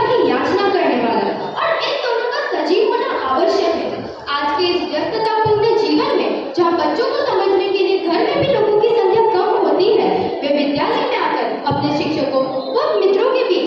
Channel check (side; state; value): both; identical; correlation 1.00